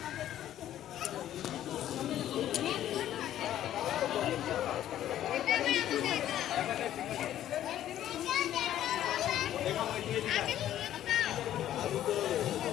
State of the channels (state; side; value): quieter; right; 12.0 dB